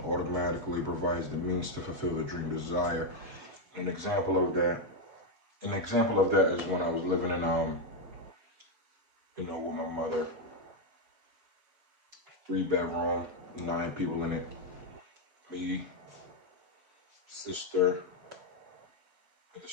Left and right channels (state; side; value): late; left; 6.1 ms